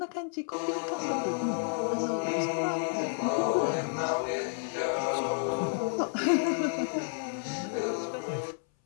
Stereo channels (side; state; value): right; silent; 57 dB below the other